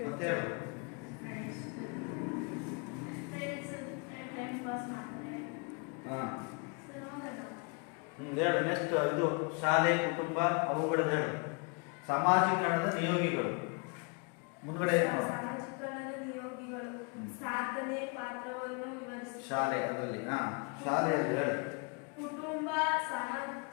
ಮತ್ತೆ ಹೇಳು. ಹೇಳು ನೆಕ್ಸ್ಟ್. ಇದು ಶಾಲೆ, ಕುಟುಂಬ, ಅವುಗಳದ್ದು ಹೇಳು. ಸಮಾಜೀಕರಣದ ನಿಯೋಗಿಗಳು ಮುಂದ್ಗಡೆ ಸಮಾಜೀಕರಣದ ನಿಯೋಗಿಗಳು ಸಾಧನೆ ಪಾತ್ರವನ್ನು ವಿವರಿಸಿ. ಶಾಲೆ ಅದರಲ್ಲಿ ಶಾಲೆಯಲ್ಲಿ ಹೇಳು. ಕುಟುಂಬ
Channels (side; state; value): right; quieter; 34.4 dB